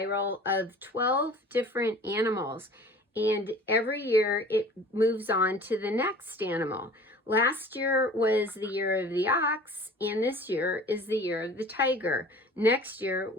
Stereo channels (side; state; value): both; normal; correlation 0.45